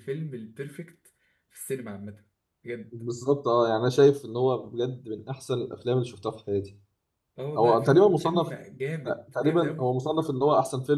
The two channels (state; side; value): identical; both; correlation 1.00